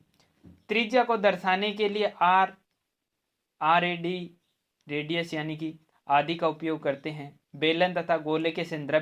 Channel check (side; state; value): both; identical; correlation 1.00